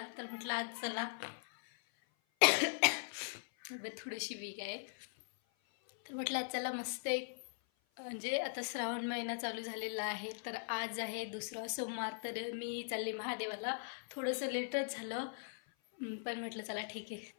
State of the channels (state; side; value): silent; right; 51 dB below the other